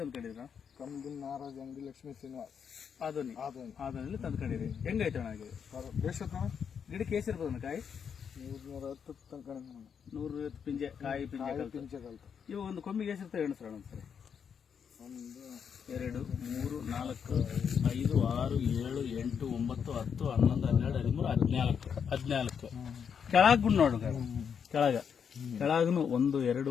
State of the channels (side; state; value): right; quieter; 7.2 dB